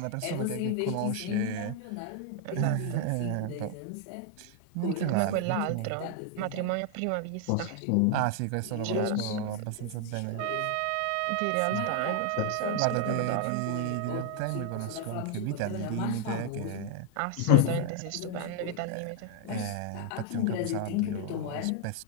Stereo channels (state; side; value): different; both; correlation 0.00